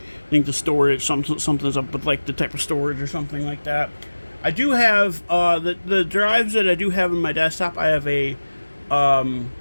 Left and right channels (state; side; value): inverted; both; correlation -1.00